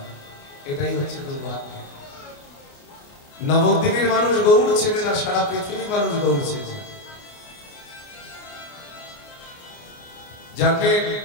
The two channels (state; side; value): late; right; 29 ms